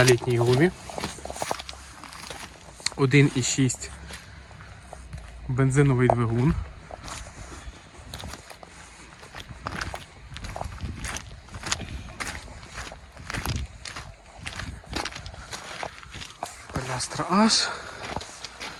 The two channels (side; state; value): both; identical; correlation 1.00